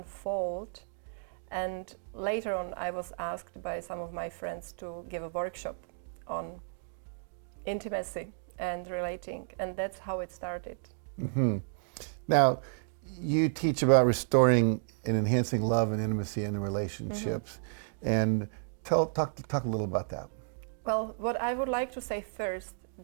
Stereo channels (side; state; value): left; silent; digital silence